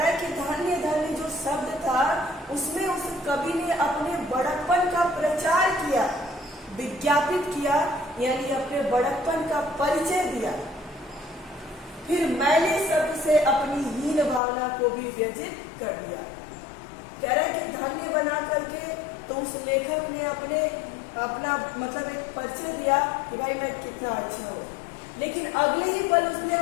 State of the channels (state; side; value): drops out; right; at 14.4 s